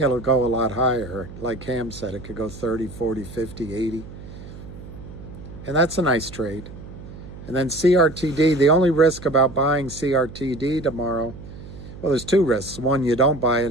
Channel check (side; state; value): right; noise; hum, 14 dB below the sound